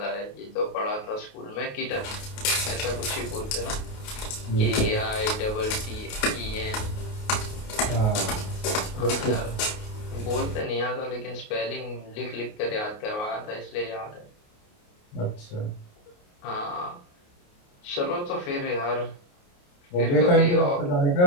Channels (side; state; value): right; late; 28 ms